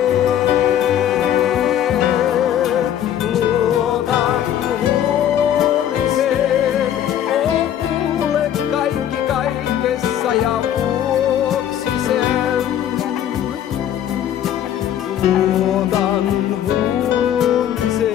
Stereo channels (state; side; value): quieter; right; 10.6 dB